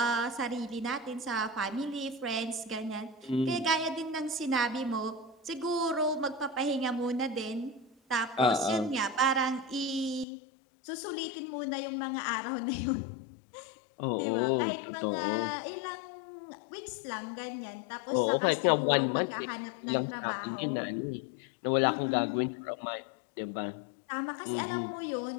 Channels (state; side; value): drops out; right; at 10.2 s